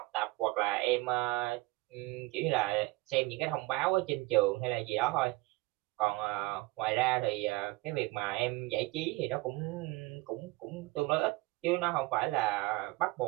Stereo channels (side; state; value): left; quieter; 22.2 dB